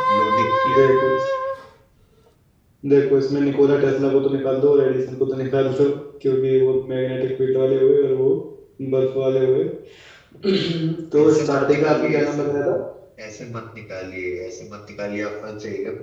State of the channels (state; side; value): identical; both; correlation 1.00